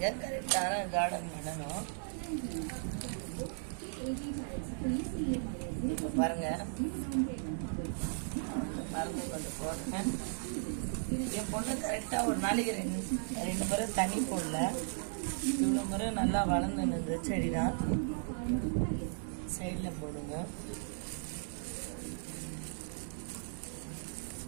கரெக்டான கார்டன் பண்ணணும். இப்ப பாருங்க மருந்து கொஞ்சம் போடுங்க. என் பொண்ணு கரெக்டா ஒரு நாளைக்கு 2 முறை தண்ணி போடல. இவ்வளவு முறை நல்லா வளர்ந்து நின்று செடிதான். சைட்ல போடுங்க.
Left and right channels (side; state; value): left; silent; 54 dB below the other